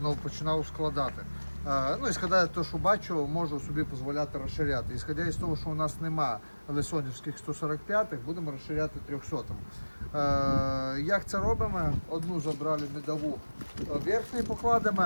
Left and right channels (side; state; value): both; inverted; correlation -1.00